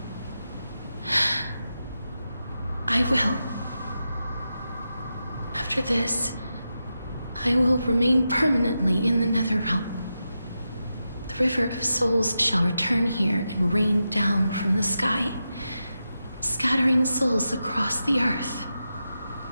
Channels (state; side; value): inverted; both; correlation -0.89